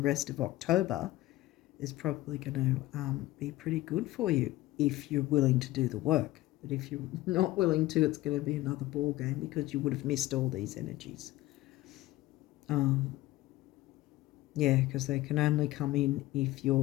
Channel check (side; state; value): right; quieter; 17.2 dB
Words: rest of October is probably going to be pretty good for you if you're willing to do the work. But if you're not willing to, it's going to be another ball game, because you would have missed all these energies. Yeah, because they can only come in if